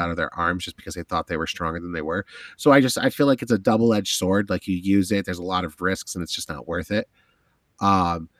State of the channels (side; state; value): both; identical; correlation 1.00